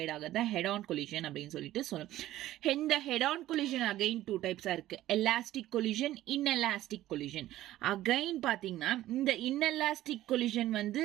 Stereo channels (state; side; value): quieter; left; 14.6 dB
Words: ஆகிறத ஹெட் ஆன் கொலிஷன் அப்படின்னு சொல்லிட்டு சொல்லணும். இந்த ஹெட் ஆன் கொலிஷன் அகைன் 2 டைப்ஸாக இருக்கு. Elastic collision, inelastic collision. Again பார்த்தீங்கன்னா இந்த இன்எலாஸ்டிக் கொலிஷன் வந்து